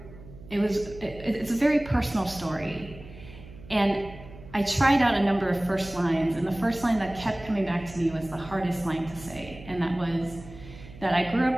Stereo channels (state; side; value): noise; right; hum, 17 dB below the sound